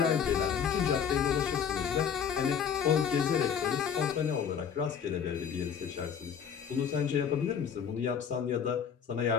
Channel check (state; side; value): quieter; right; 7.6 dB